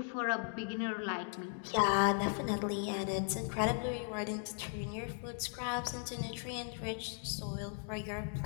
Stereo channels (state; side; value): silent; right; 53 dB below the other